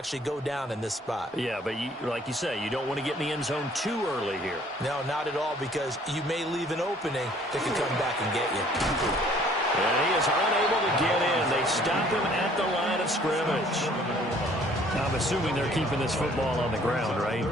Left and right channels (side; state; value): both; normal; correlation 0.57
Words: go down in this spot. Yeah, but like you say, you don't want to get in the end zone too early here. No, not at all, because you may leave an opening that can come back and get you. And he is unable to get in. They stop him at the line of scrimmage. I'm assuming they're keeping this football on the ground, right?